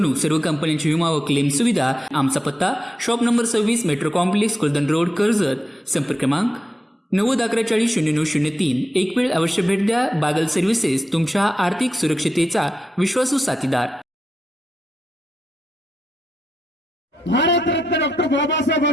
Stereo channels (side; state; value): both; normal; correlation 0.87